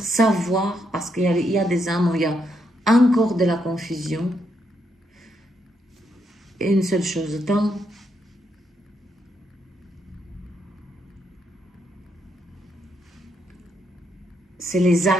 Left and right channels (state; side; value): normal; both; correlation 0.78